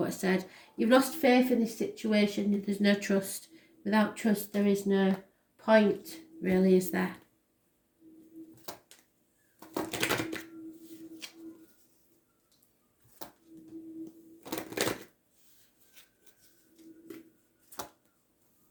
I said. You've lost faith in this situation. There's no trust. Without trust, there is no point, really, is there?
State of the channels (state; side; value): identical; both; correlation 1.00